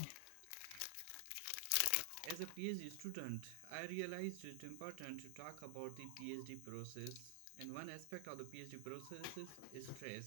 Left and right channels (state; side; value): different; both; correlation 0.00